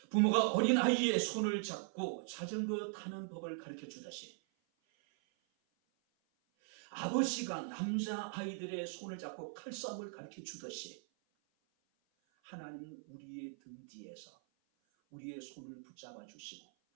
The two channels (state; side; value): silent; left; 51 dB below the other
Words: 부모가 어린 아이의 손을 잡고 자전거 타는 법을 가르쳐 주듯이, 아버지가 남자 아이들의 손을 잡고 칼싸움을 가르쳐 주듯이, 하나님은 우리의 등 뒤에서 우리의 손을 붙잡아 주시고